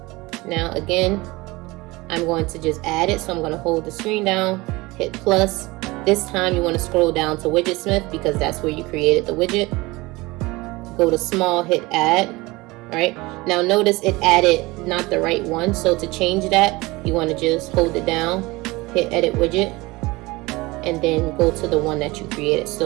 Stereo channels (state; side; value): quieter; left; 22.1 dB